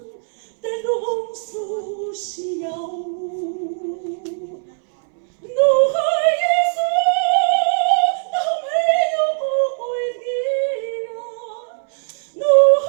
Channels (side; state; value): left; silent; 64 dB below the other